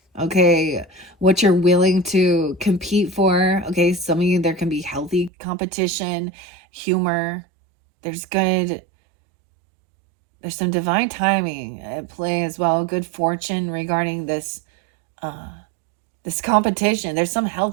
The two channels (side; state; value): left; drops out; at 5.3 s